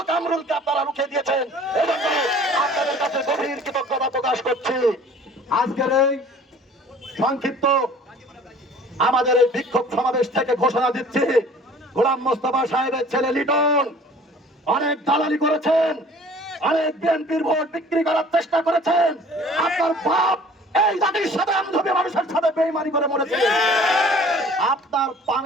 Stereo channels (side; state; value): both; normal; correlation 0.50